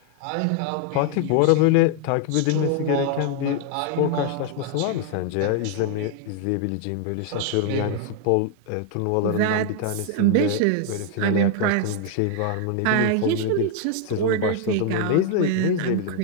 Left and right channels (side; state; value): both; different; correlation 0.00